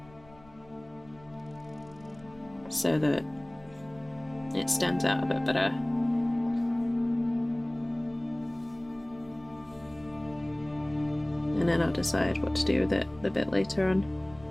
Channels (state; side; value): noise; left; rumble, 24 dB below the sound